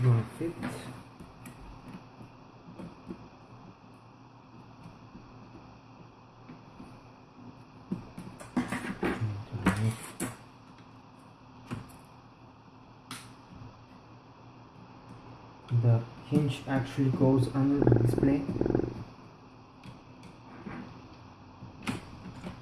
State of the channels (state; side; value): identical; both; correlation 1.00